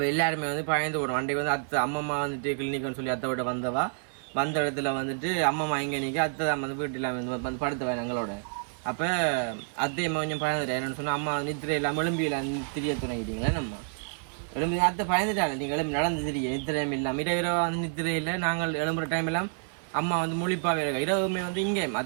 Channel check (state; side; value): silent; left; digital silence